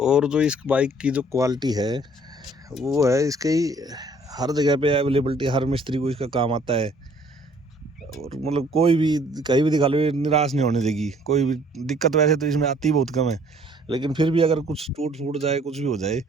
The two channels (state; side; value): normal; both; correlation 0.58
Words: जो इस बाइक की जो क्वालिटी है वो है इसकी हर जगह पे अवेलेबिलिटी, हर मिस्त्री को इसका काम आता है। और मतलब कोई भी कहीं भी दिखा लो ये निराश नहीं होने देगी। कोई भी दिक्कत वैसे तो इसमें आती बहुत कम है, लेकिन फिर भी अगर कुछ टूट फूट जाए, कुछ भी हो जाए,